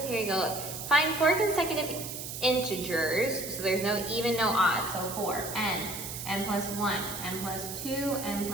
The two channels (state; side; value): noise; right; hiss, 8 dB below the sound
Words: Here you go. Find 4 consecutive integers. So there's no even, no odd. So 4. N plus 1, n plus 2, n